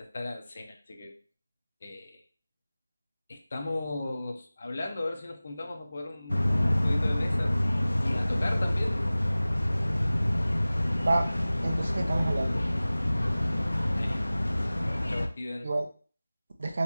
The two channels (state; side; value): inverted; both; correlation -0.98